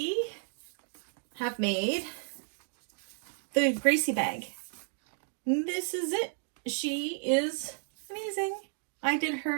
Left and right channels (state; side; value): silent; left; digital silence